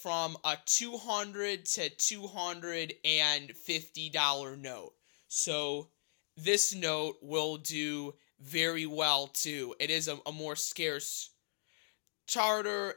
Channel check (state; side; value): silent; right; digital silence